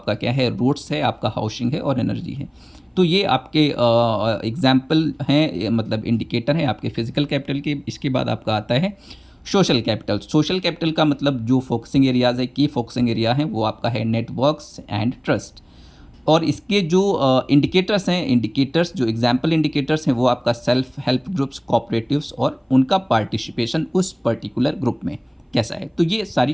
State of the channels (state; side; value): identical; both; correlation 1.00